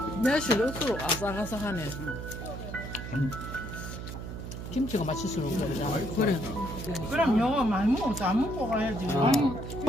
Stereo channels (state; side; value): noise; right; hum, 8 dB below the sound